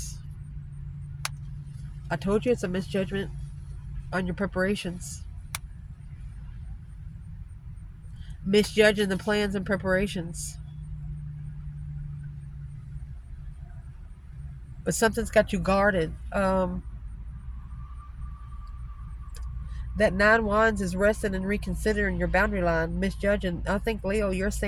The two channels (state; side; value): identical; both; correlation 1.00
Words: I told you it's a misjudgment on your preparations. Misjudging the plans and preparations. But something's got you guarded. That 9 wands is resting and reconsidering your boundary line, misjudging. I think, Leo, you're